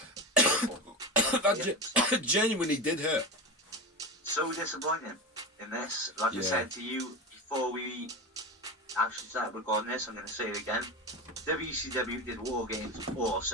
That genuinely did hurt. So disappointing in this. Like I said to you before we actually started recording this, I'm going to say it again. WCW did War Games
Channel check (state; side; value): normal; both; correlation 0.23